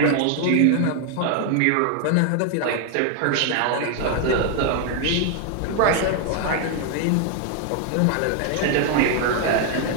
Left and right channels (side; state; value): both; different; correlation 0.00